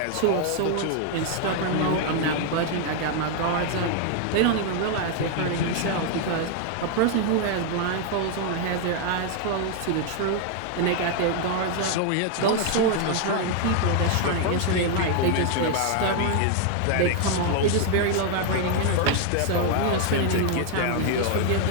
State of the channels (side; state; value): both; different; correlation 0.00